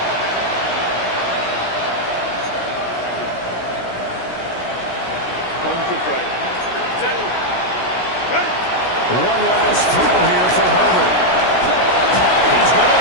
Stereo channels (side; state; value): right; late; 16 ms